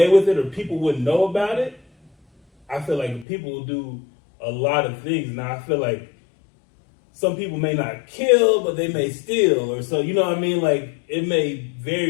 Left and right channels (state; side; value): drops out; right; at 3.2 s